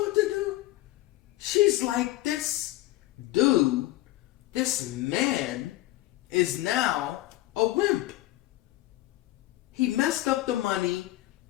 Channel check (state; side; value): quieter; right; 17.0 dB